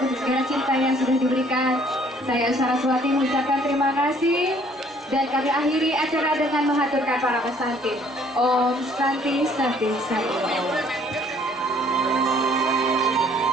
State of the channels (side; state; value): both; normal; correlation 0.60